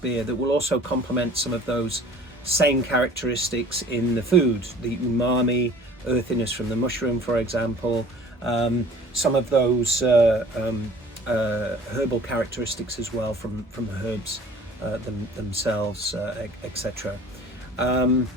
that will also complement some of those same characteristics in the food, the umami, earthiness from the mushroom, for example, some of those herbal characteristics as well from herbs themselves, etc.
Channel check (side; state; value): both; normal; correlation 0.48